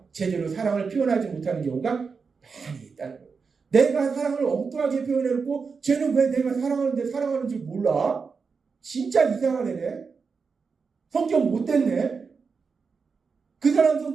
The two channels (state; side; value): quieter; left; 5.2 dB